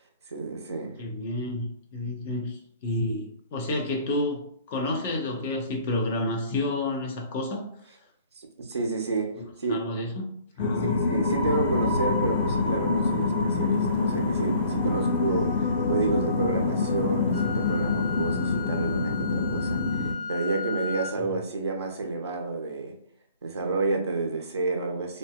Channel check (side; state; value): both; inverted; correlation -0.54